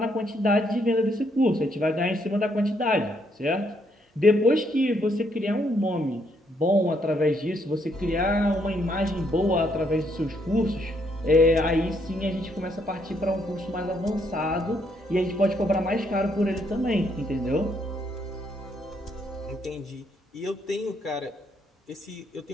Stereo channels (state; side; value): normal; both; correlation 0.73